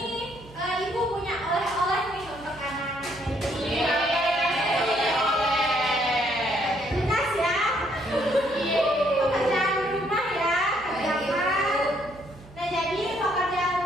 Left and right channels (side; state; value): right; noise; hum, 20 dB below the sound